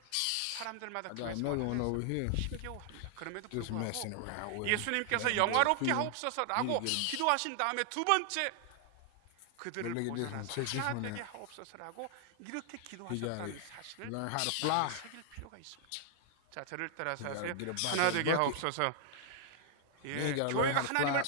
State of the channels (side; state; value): both; different; correlation 0.00